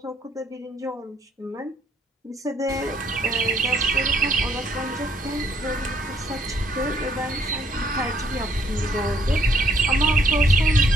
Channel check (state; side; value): normal; both; correlation 0.66